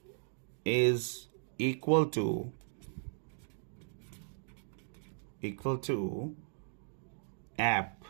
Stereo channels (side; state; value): left; silent; digital silence